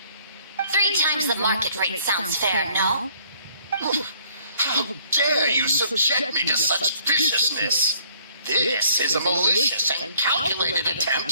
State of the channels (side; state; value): both; inverted; correlation -0.60